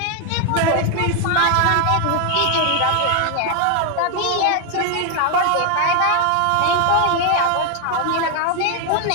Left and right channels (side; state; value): both; different; correlation 0.01